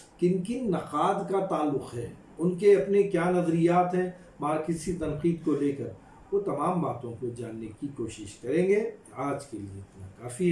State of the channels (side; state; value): both; identical; correlation 1.00